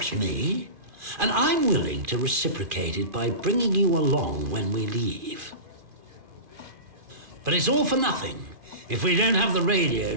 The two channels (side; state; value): left; late; 2.4 ms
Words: me, and I'm willing to reciprocate it by bringing you along when we leave. But it's all for nothing if we don't have the radio